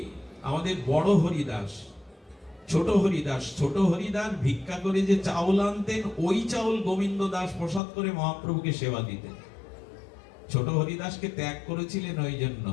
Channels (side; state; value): right; drops out; at 7.8 s